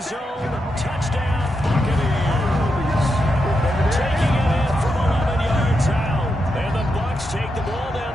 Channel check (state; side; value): normal; both; correlation 0.85